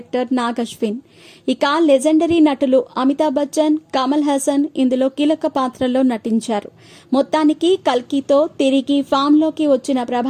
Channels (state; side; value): identical; both; correlation 1.00